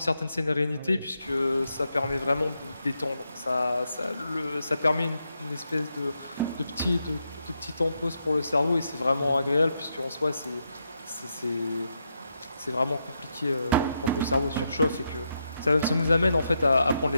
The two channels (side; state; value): both; inverted; correlation -0.82